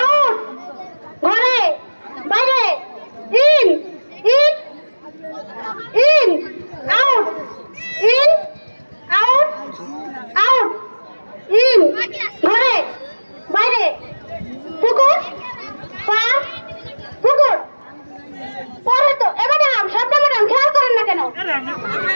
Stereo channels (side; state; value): both; inverted; correlation -1.00